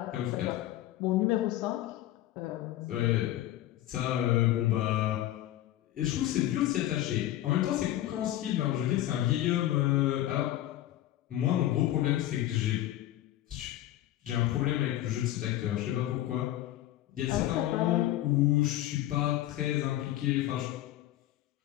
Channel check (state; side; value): quieter; right; 14.1 dB